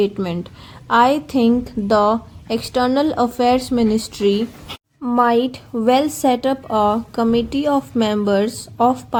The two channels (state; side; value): identical; both; correlation 1.00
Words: I think the External Affairs Ministry might well set up a committee of members of